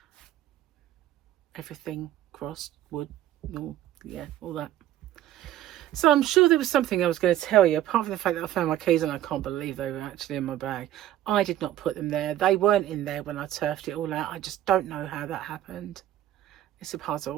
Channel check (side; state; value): left; quieter; 12.7 dB